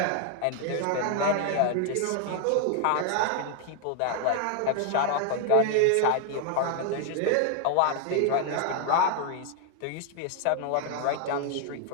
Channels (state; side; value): different; both; correlation 0.00